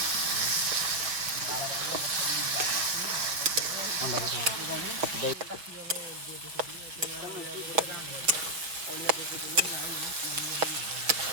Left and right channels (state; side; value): late; left; 5.9 ms